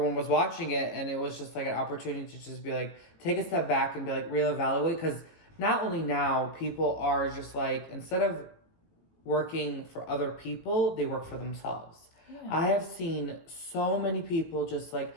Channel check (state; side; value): late; right; 18 ms